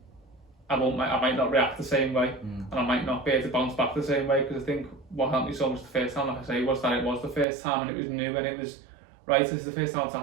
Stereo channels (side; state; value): left; drops out; at 7.5 s